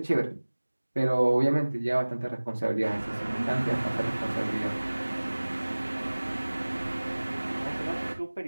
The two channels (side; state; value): both; inverted; correlation -1.00